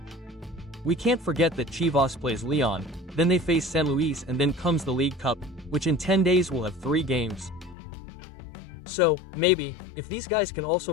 We can't forget that Chivas plays Leon, then they face San Luis, and then comes the League Cup, which in 10 days will have 3 games. So, maybe, if these guys can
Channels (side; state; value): right; drops out; at 7.8 s